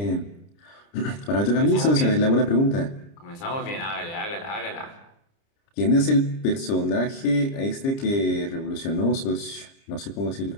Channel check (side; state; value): right; late; 30 ms